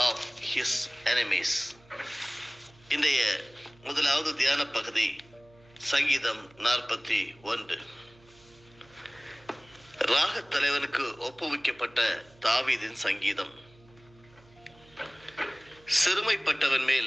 of his enemies. இன்றைய முதலாவது தியான பகுதி சங்கீதம் 41. ராகத் தலைவனுக்கு ஒப்புவிக்கப்பட்ட தாவீதின் சங்கீதம். சிறுமைப்பட்டவன் மேல்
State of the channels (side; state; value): right; noise; hum, 27 dB below the sound